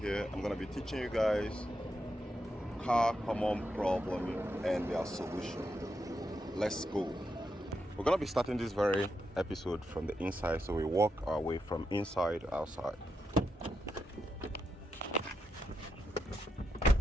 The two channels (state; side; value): normal; both; correlation 0.84